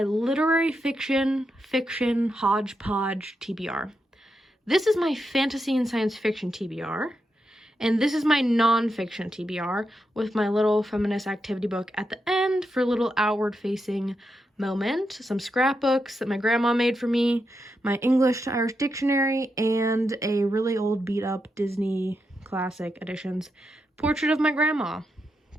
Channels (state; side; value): normal; both; correlation 0.85